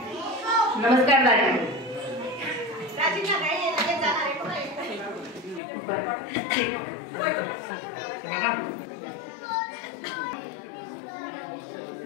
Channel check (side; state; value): right; drops out; at 5.6 s